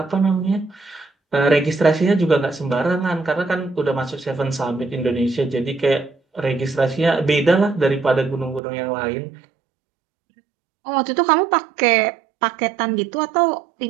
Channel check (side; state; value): left; drops out; at 8.6 s